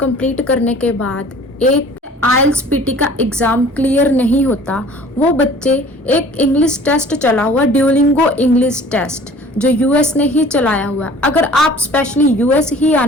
करने के बाद एक आइल्स पीटी का एग्ज़ाम क्लियर नहीं होता, वो बच्चे एक इंग्लिश टेस्ट चला हुआ ड्यूलिंगो इंग्लिश टेस्ट जो यूएस ने ही चलाया हुआ है। अगर आप स्पेशली यूएस ही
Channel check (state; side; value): normal; both; correlation 0.49